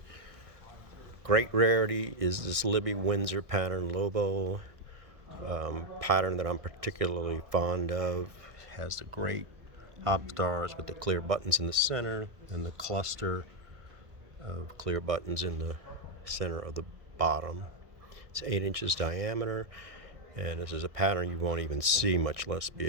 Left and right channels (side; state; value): left; late; 1.6 ms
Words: Great rarity is this Libby Windsor pattern Lobo pattern that I'm particularly fond of. It has the great hop stars with the clear buttons in the center and the cluster of clear buttons in the center of the bottom. It's 8 inches diameter, and this is a pattern you won't even see, much less be